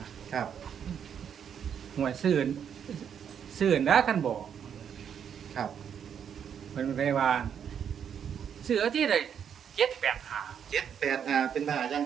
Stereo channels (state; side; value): quieter; left; 8.1 dB